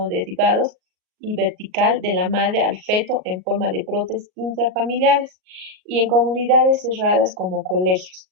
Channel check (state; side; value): late; left; 38 ms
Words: y vertical de la madre al feto en forma de brotes intrafamiliares y en comunidades cerradas como colegios.